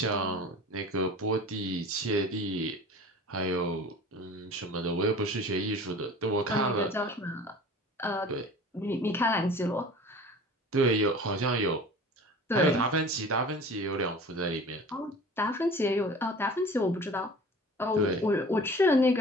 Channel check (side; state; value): both; normal; correlation 0.41